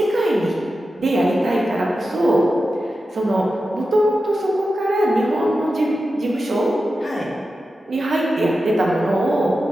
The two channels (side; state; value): both; normal; correlation 0.91